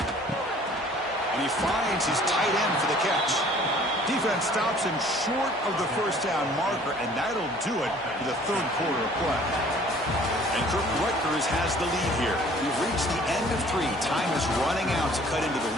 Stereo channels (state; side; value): normal; both; correlation 0.53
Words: And he finds his tight end for the catch. Defense stops him short of the first down marker, and that'll do it for the 3rd quarter of play. And Rutgers has the lead here. We've reached the end of 3. Time is running out to cut into the